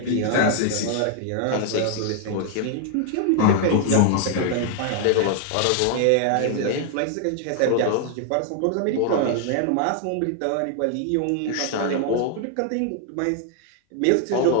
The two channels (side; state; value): both; different; correlation 0.00